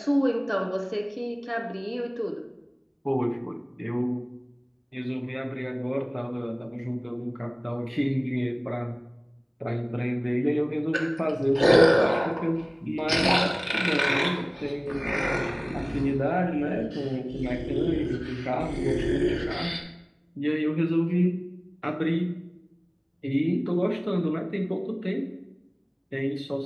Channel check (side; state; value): both; identical; correlation 1.00